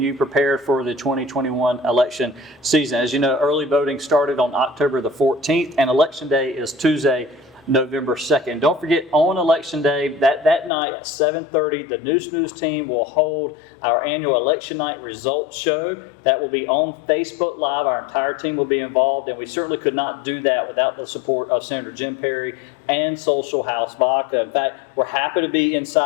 prepared for the 2021 election season. As you know, early voting started on October the 14th, and Election Day is Tuesday, November 2nd. Don't forget, on Election Day, that night at 7:30, the Neuse team will hold our annual Election Night Results Show. That will be on Facebook Live. Our entire team will be involved, and we certainly could not do that without the support of Senator Jim Perry and Social House Vodka. In fact, we're happy to be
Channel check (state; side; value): drops out; right; at 10.7 s